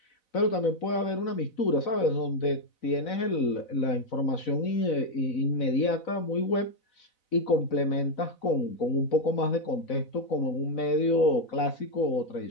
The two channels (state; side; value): late; right; 4.0 ms